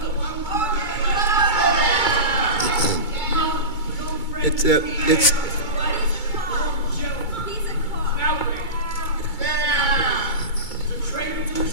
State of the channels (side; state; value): right; late; 2.2 ms